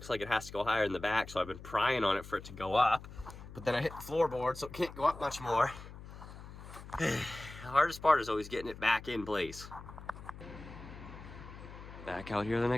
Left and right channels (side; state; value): left; noise; hum, 14 dB below the sound